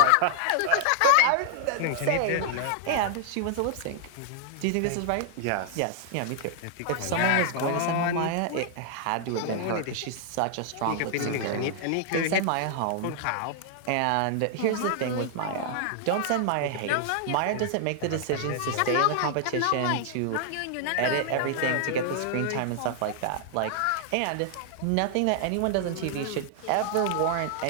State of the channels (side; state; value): both; different; correlation 0.00